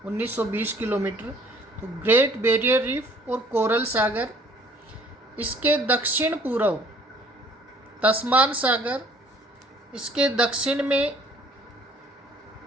1920 किलोमीटर, तो ग्रेट बैरियर रीफ और कोरल सागर, इसके दक्षिण पूर्व तस्मान सागर, इसके दक्षिण में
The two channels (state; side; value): normal; both; correlation 0.56